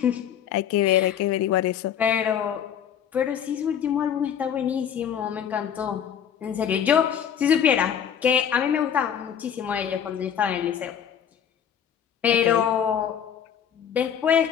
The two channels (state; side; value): quieter; right; 8.7 dB